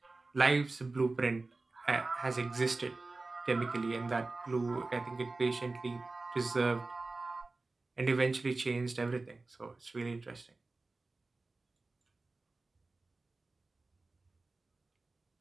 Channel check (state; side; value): quieter; left; 3.4 dB